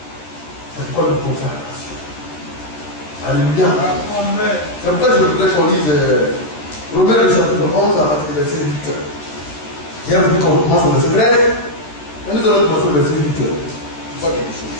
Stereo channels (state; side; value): late; right; 13 ms